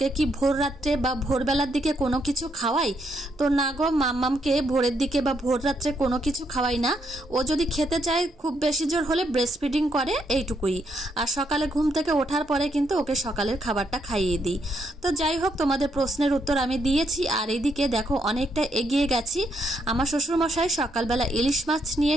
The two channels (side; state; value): both; normal; correlation 0.76